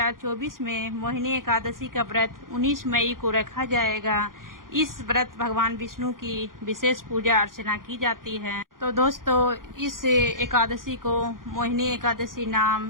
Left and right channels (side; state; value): left; late; 0.91 ms